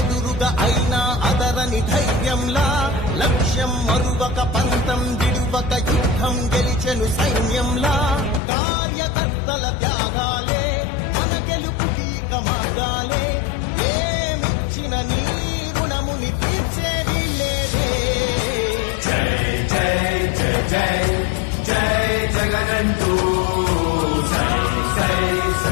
అయినా అదరని ధైర్యంలా లక్ష్యం మరువక పంతం విడువక యుద్ధం గెలిచెను సైన్యంలా కార్యకర్తల త్యాగాలే మన గెలుపుకీక మార్గాలే ఏమిచ్చిన నీ రుణముని తీర్చేది లేదే జై జై జై జై జై జగనంటూ సై సై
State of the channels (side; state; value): right; drops out; at 8.4 s